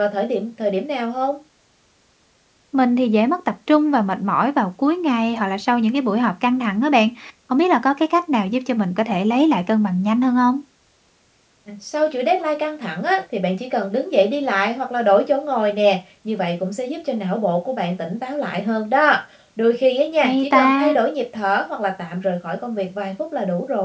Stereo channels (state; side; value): identical; both; correlation 1.00